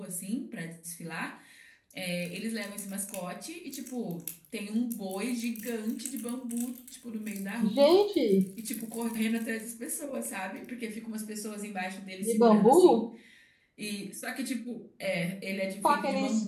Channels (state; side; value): identical; both; correlation 1.00